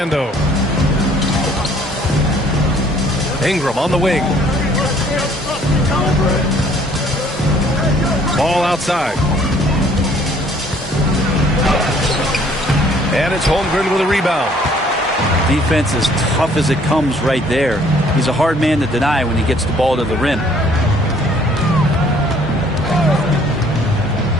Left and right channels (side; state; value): both; normal; correlation 0.59